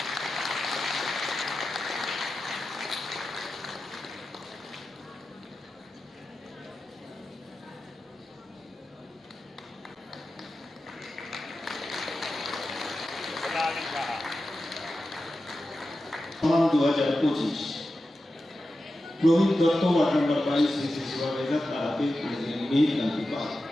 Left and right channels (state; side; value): normal; both; correlation 0.92